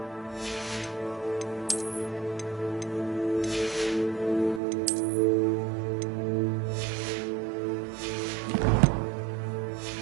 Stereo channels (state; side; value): drops out; left; at 4.6 s